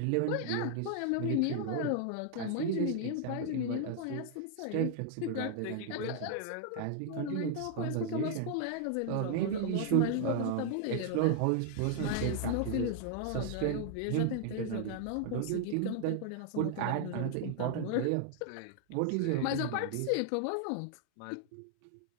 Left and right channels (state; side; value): different; both; correlation 0.00